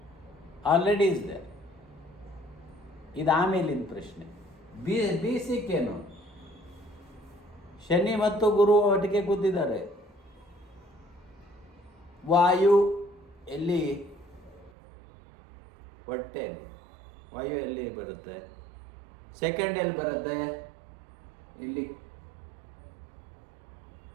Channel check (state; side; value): drops out; left; at 14.7 s